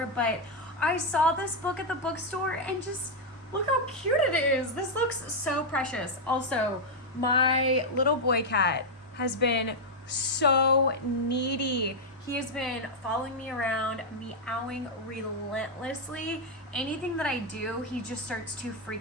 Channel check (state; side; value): normal; both; correlation -0.02